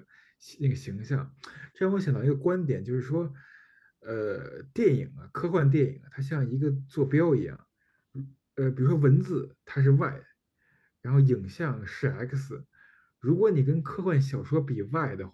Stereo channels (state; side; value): identical; both; correlation 1.00